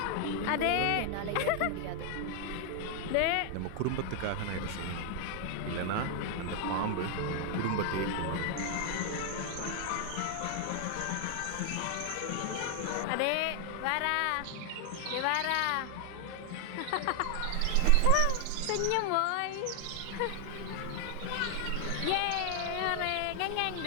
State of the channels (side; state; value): both; different; correlation 0.00